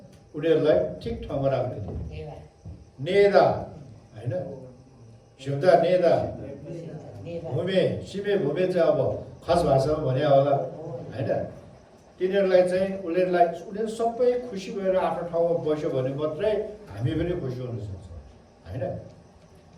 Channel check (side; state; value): both; identical; correlation 1.00